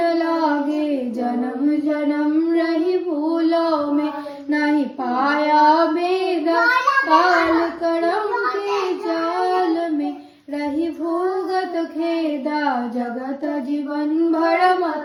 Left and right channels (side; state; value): both; identical; correlation 1.00